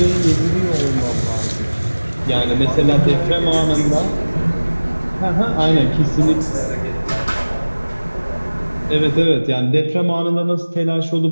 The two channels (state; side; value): inverted; both; correlation -1.00